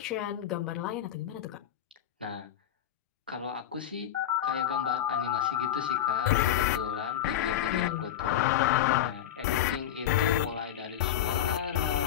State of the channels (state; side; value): quieter; right; 11.0 dB